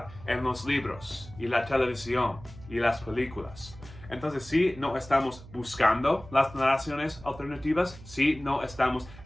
en los libros y la televisión y las películas. Entonces, si no estamos buscando las narraciones alternativas, si no estamos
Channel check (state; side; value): noise; right; hum, 18 dB below the sound